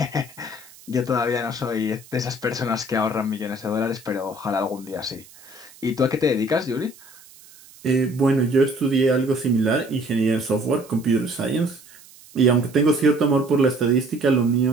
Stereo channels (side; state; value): right; noise; hiss, 23 dB below the sound